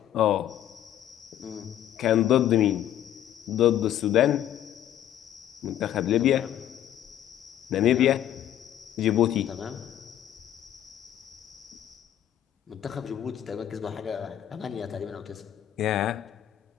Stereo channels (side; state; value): right; quieter; 11.3 dB